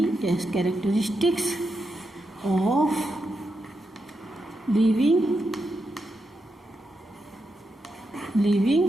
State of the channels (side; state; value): both; normal; correlation 0.85